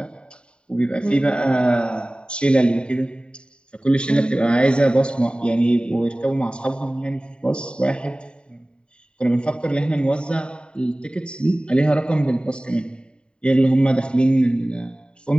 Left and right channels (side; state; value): right; late; 0.051 ms